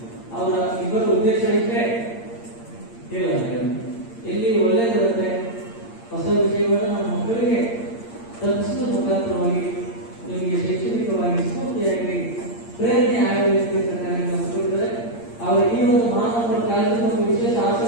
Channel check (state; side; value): late; right; 8.7 ms